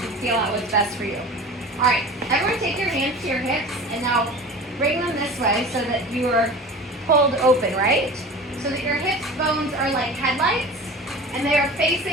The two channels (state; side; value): normal; both; correlation 0.37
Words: feel out what's best for you. All right, everyone take your hands to your hips and now bring them this way so that you are pulled open, right? So that your hips bones are like headlights and they are